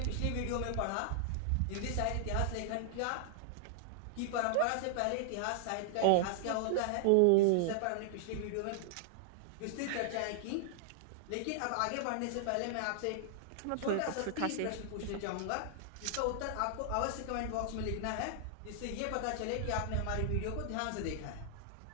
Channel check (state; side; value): different; both; correlation -0.01